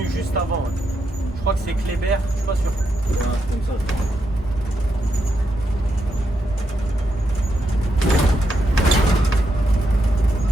juste avant. Ouais. Je crois que c'est Kléber, je suis pas sûr. Ouais, c'est comme ça.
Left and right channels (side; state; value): both; normal; correlation 0.83